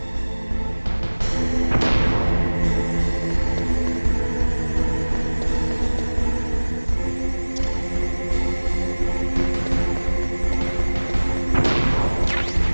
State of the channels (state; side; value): inverted; both; correlation -1.00